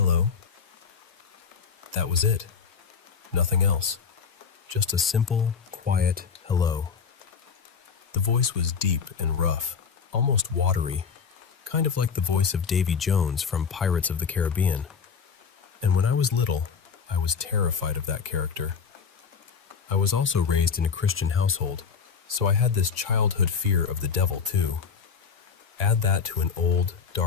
That was it. Nothing else. Just a simple, quiet hello. The voice was deep and rough, almost watery, kind of like the voice of Davy Jones from Pirates of the Caribbean. And when I was little, I was terrified of that character. I was also raised in a Christian household, so I had this childhood fear of the devil too. Add that to an old,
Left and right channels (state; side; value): quieter; right; 6.1 dB